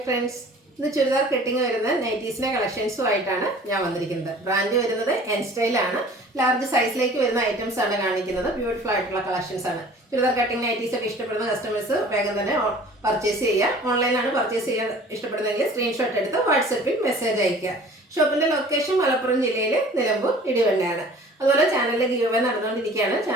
friends, ഇന്ന് churidar cutting വരുന്ന നൈറ്റീസിന്റെ കളക്ഷൻസുമായിട്ടാണ് ഞാൻ വന്നിരിക്കുന്നത്. ബ്രാൻഡ് വരുന്നത് എൻ സ്റ്റൈൽ ആണ്. ലാർജ് സൈസിലേക്ക് വരുന്ന ഐറ്റംസ് ആണ് കാണിക്കുന്നത്. ബ്യൂട്ടിഫുൾ ആയിട്ടുള്ള കളക്ഷൻസ് ആണ്. ചുരിദാർ കട്ടിങ് നൈറ്റീസ് ഒക്കെ ഇഷ്ടപ്പെടുന്ന കസ്റ്റമേഴ്സ് വേഗം തന്നെ പർച്ചേസ് ചെയ്യുക. ഓൺലൈനാണ് പർച്ചേസ് ചെയ്യാൻ ഇഷ്ടപ്പെടുന്നതെങ്കിൽ സ്ക്രീൻഷോട്ട് എടുത്ത് വാട്സപ്പിൽ മെസ്സേജ് അയക്കുക. ഷോപ്പിന്റെ ലൊക്കേഷൻ മലപ്പുറം ജില്ലയിൽ നിലമ്പൂർ ഇടിവണ്ണയാണ്. അതുപോലെ ചാനലിലെ ഗീവ് അവേ നടന്നുകൊണ്ടിരിക്കുകയാണ്.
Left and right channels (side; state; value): both; normal; correlation 0.48